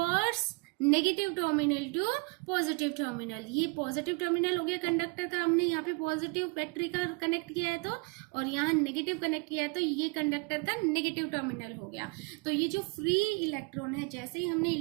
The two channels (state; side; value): quieter; left; 31.0 dB